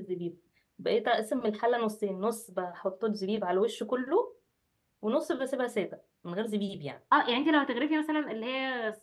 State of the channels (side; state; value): both; identical; correlation 1.00